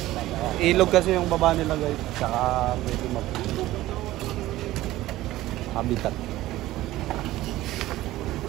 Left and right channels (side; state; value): left; quieter; 16.2 dB